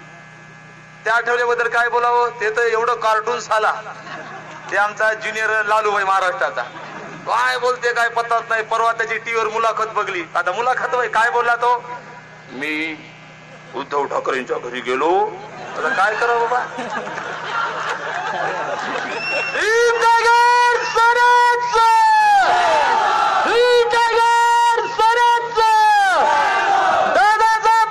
त्या आठवल्याबद्दल काय बोलावं, ते तर एवढं कार्टून साला. ते आमचा ज्युनियर लालू भाई महाराष्ट्राचा, काय बोलते काय पत्ताच नाही. परवा त्याची टीव्हीवर मुलाखत बघली. आता मुलाखत भाई काय बोलला तो, मी उद्धव ठाकरेंच्या घरी गेलो. आता काय करावं बाबा,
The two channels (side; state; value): both; identical; correlation 1.00